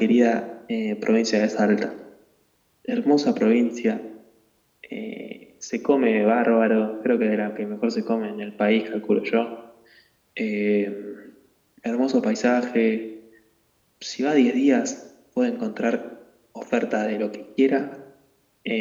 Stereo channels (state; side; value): identical; both; correlation 1.00